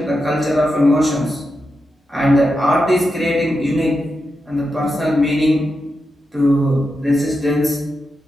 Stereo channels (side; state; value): both; normal; correlation 0.88